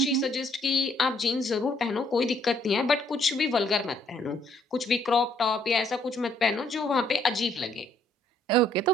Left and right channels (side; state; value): both; normal; correlation 0.67